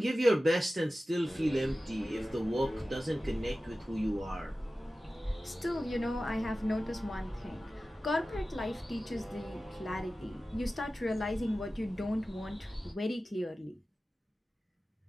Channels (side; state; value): both; normal; correlation 0.95